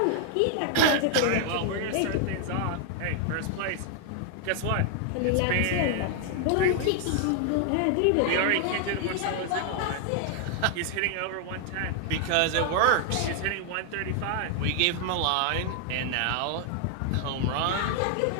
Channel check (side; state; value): both; different; correlation 0.00